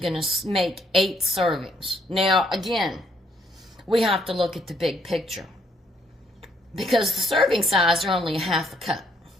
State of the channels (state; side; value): normal; both; correlation 0.69